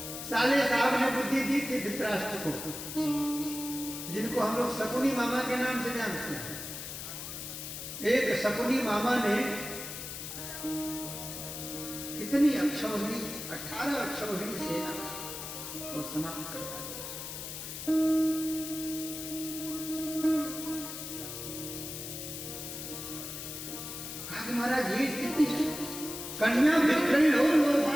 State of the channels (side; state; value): left; noise; hiss, 8 dB below the sound